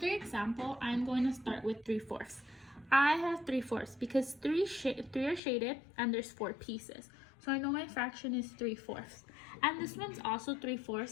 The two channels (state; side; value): drops out; right; at 5.4 s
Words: example, I'm going to start with 3/4. I have 3/4 because three are shaded and there's 4 pieces. So I know my fraction is 3/4. And this one's also